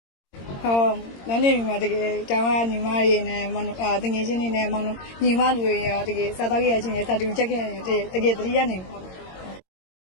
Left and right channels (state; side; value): late; right; 22 ms